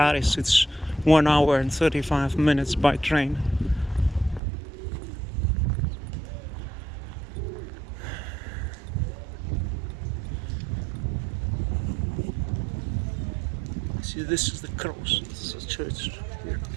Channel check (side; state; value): left; drops out; at 4.4 s